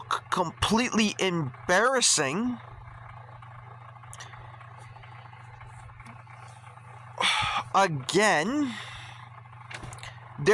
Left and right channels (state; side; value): identical; both; correlation 1.00